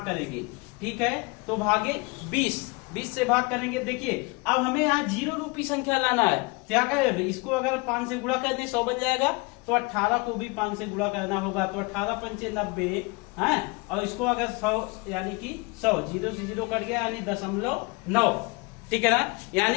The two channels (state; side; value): quieter; right; 27.7 dB